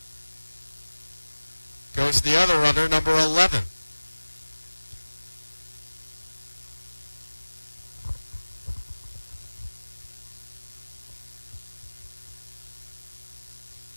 goes the other runner, number 11.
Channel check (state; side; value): inverted; both; correlation -1.00